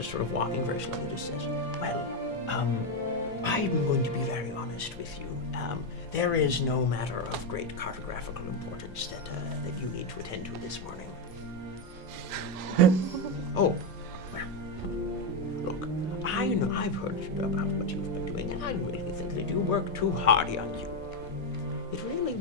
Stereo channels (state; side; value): normal; both; correlation 0.06